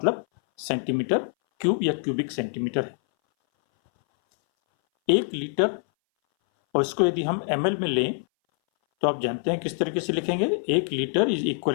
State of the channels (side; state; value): right; silent; 60 dB below the other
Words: सेंटीमीटर क्यूब या क्यूबिक सेंटीमीटर है। 1 लीटर, और इसको यदि हम ml में लें तो आप जानते हैं किस तरीके से लिखेंगे। 1 litre is